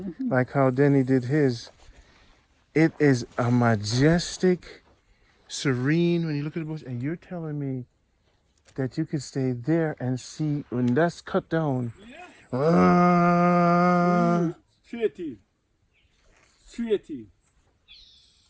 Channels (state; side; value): identical; both; correlation 1.00